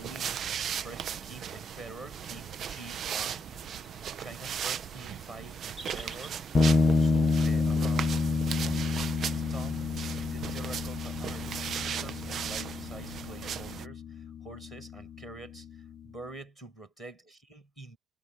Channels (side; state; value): both; normal; correlation 0.80